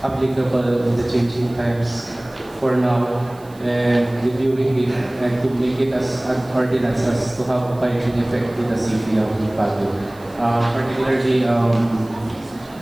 applicable in the changing times for now, and reviewing it and to make it as an ordinance as to have a binding effect in the city of Baguio. Particularly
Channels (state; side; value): noise; right; hiss, 26 dB below the sound